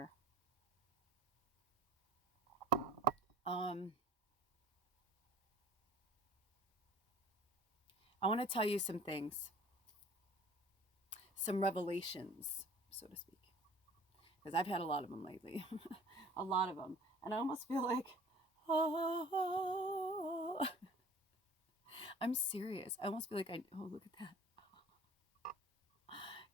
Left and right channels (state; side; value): normal; both; correlation 0.48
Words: I want to tell you some things, some revelations, so to speak, because I've had a lot of them lately, a lot of them, and I almost feel like, oh, I'm serious. I almost feel like oh, look at that.